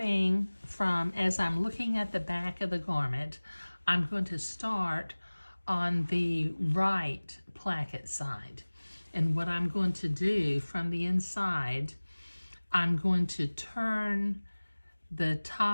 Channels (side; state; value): both; inverted; correlation -1.00